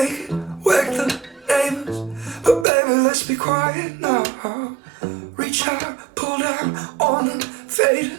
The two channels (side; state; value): left; drops out; at 2.7 s